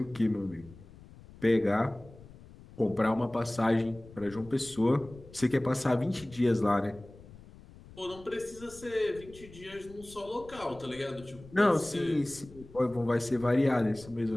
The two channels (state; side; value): noise; left; rumble, 20 dB below the sound